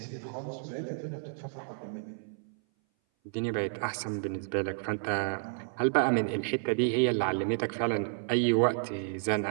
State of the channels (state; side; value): silent; left; 57 dB below the other